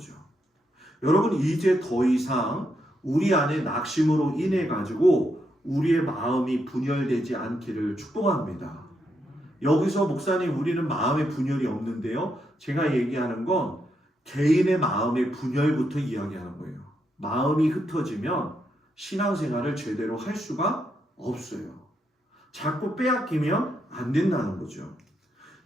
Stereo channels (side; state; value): both; normal; correlation 0.80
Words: 여러분 이제 더 이상 우리 안에 낙심으로 인해 가지고 우리의 마음이 분열되지 않기를 축복합니다. 여기서 목사님 우리는 마음의 분열이 없는데요. 제가 얘기하는 건 개인의 마음의 분열부터 이야기하는 거예요. 마음이 흩어지면 신앙생활을 제대로 할 수가 없어요. 자꾸 빼앗기면 안 된다는 거죠.